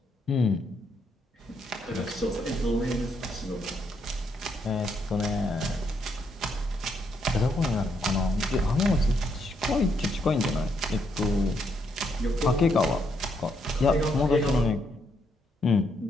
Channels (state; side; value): normal; both; correlation 0.76